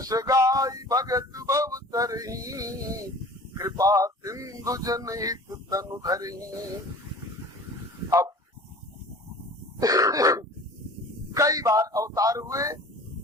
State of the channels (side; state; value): both; normal; correlation 0.43